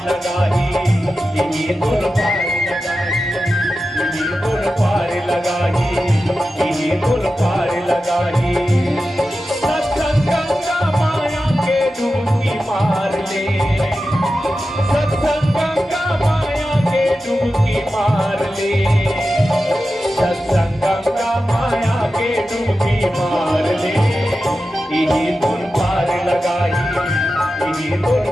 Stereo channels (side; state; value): both; normal; correlation 0.92